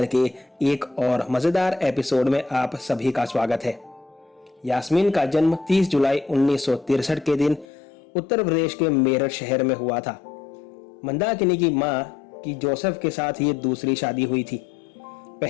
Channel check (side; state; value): right; drops out; at 7.7 s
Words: के एक और मज़ेदार एपिसोड में आप सभी का स्वागत है। यास्मीन का जन्म 30 जुलाई 1963 के दिन उत्तर प्रदेश के मेरठ शहर में हुआ था। मंदाकिनी की मां की जोसेफ के साथ ये दूसरी शादी हुई थी।